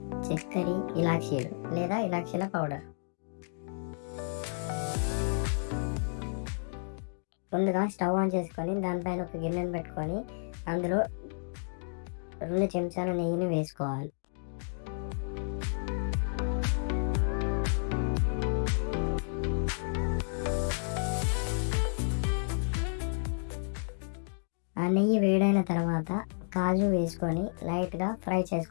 చక్కెర, ఇలాచీలు లేదా ఇలాచీల పౌడర్. ముందుగా స్టవ్ ఆన్ చేసుకొని దానిపైన ఒక గిన్నెను పెట్టుకొని అందులో 2 చెంచాల నెయ్యిని వేసుకోవాలి. ఆ నెయ్యి వేడైన తర్వాత కాజు వేసుకొని లైట్గా ఫ్రై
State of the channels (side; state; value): right; silent; digital silence